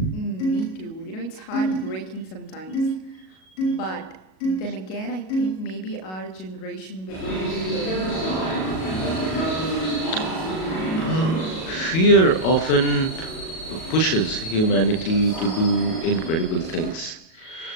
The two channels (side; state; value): right; late; 37 ms